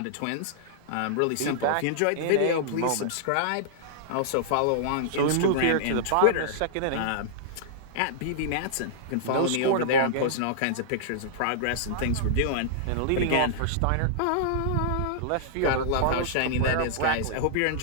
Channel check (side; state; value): both; different; correlation -0.01